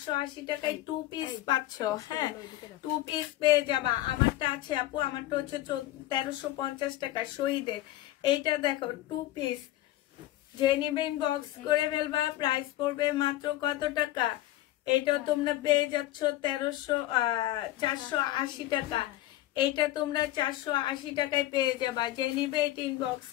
টাকায় 2 পিস পাচ্ছ। হ্যাঁ 2 পিস পেয়ে যাবা। আমারটা আছে আপু, আমারটা হচ্ছে 1350 টাকা শহীদের। এইটা দেখো 2 পিস। যে নিবে ইনবক্স করে ফেলবা। প্রাইস পড়বে মাত্র কত টাকা? এটা তোমরা পেয়ে যাচ্ছ 480 টাকা। এইটা তোমরা 480 টাকায় পেয়ে যাবা। যে নিবে এটা ইনবক্স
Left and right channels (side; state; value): right; quieter; 15.0 dB